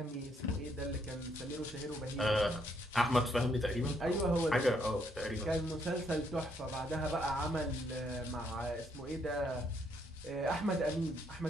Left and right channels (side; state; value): both; normal; correlation 0.72